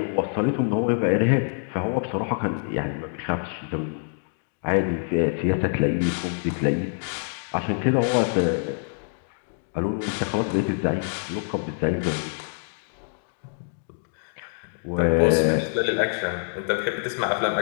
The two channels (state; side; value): silent; right; 61 dB below the other